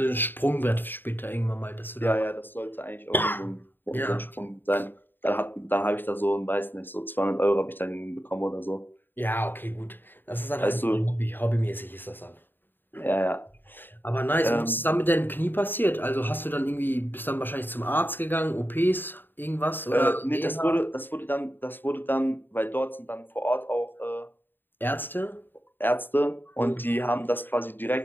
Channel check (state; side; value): late; right; 0.094 ms